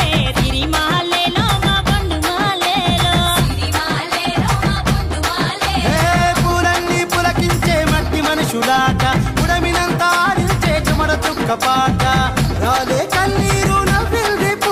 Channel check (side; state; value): both; identical; correlation 1.00